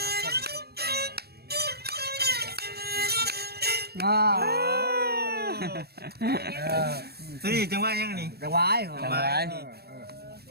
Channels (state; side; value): late; left; 0.46 ms